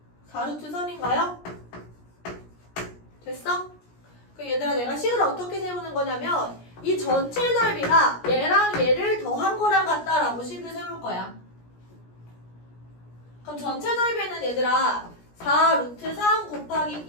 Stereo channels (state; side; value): late; right; 17 ms